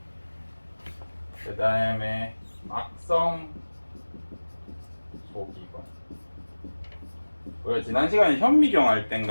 그 다음에 막성 소기관. 우리가 지난 시간에 현미경 할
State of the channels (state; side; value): inverted; both; correlation -1.00